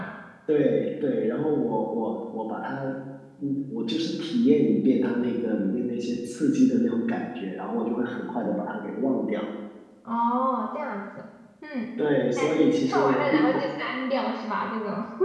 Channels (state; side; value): identical; both; correlation 1.00